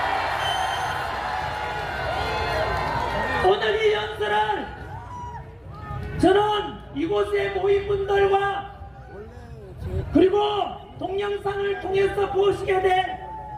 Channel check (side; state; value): both; identical; correlation 1.00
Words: 오늘 이 연설을 저는 이곳에 모인 분들과 그리고 동영상을 통해서 보시게 된